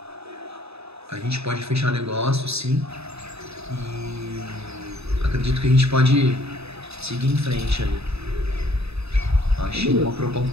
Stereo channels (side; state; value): left; late; 0.79 ms